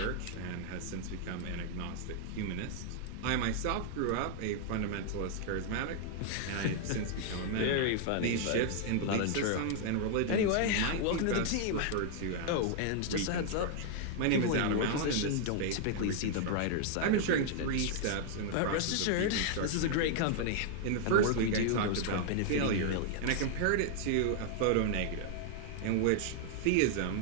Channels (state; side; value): different; both; correlation 0.00